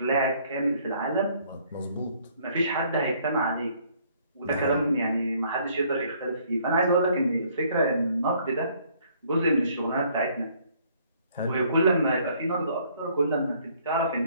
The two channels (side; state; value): both; inverted; correlation -0.63